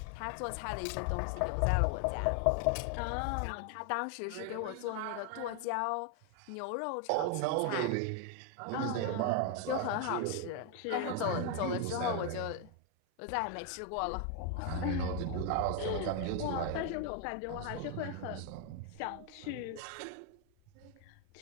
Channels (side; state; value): both; different; correlation 0.01